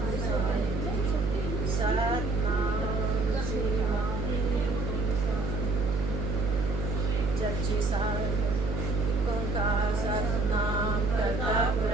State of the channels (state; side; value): noise; right; hum, 2 dB below the sound